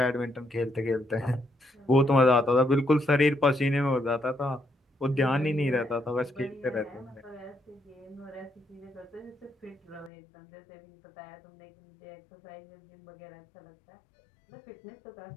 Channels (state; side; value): drops out; right; at 10.1 s